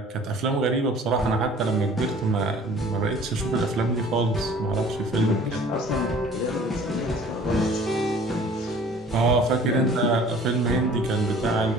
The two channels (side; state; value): both; normal; correlation 0.49